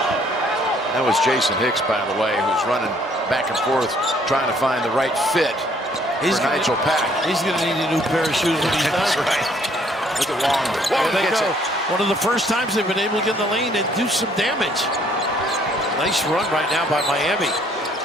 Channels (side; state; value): both; normal; correlation 0.63